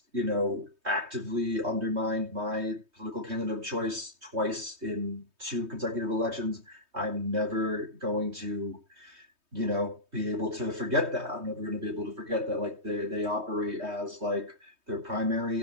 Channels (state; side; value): late; left; 3.2 ms